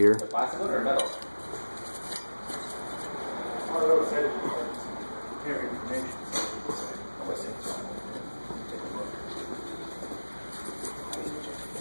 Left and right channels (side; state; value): both; inverted; correlation -1.00